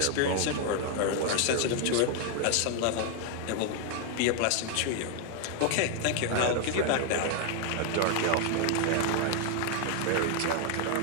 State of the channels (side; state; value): both; different; correlation 0.00